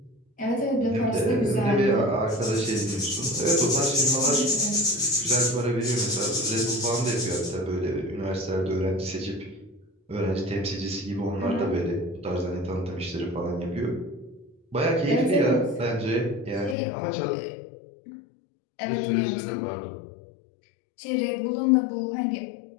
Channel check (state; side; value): drops out; right; at 16.8 s